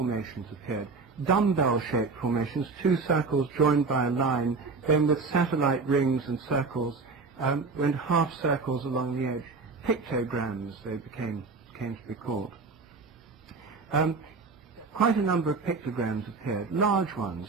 appeared, dumbbell-shaped formations, 2 circles joined by a line, then with satellite rings and circles, and half circles along the edge, pictograms they came to be called. Quite a number of pictograms appeared, large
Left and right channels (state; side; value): quieter; left; 4.3 dB